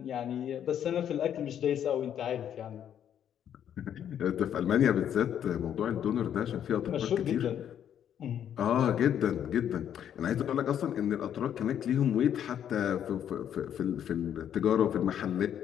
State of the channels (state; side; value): quieter; right; 9.6 dB